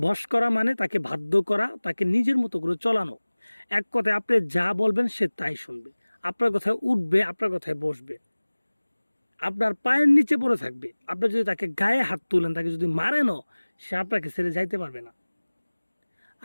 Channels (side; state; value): both; inverted; correlation -1.00